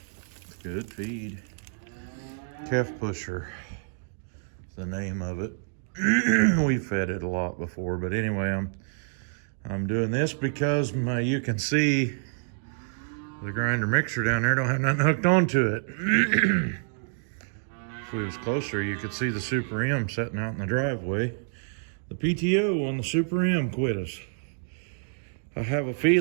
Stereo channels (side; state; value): left; silent; digital silence